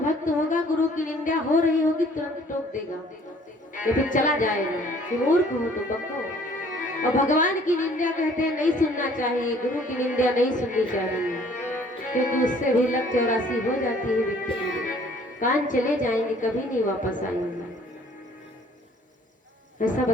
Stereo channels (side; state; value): both; normal; correlation 0.56